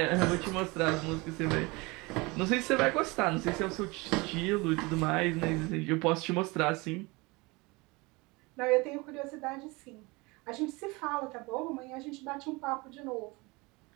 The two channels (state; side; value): quieter; left; 25.1 dB